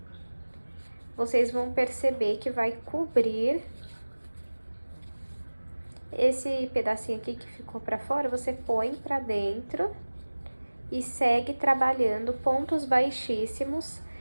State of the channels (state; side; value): inverted; both; correlation -1.00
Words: Vocês vão perceber que vai cobrir esse pedacinho aqui que ficou pra fora, você põe pra dentro e segue trabalhando pontos baixíssimos,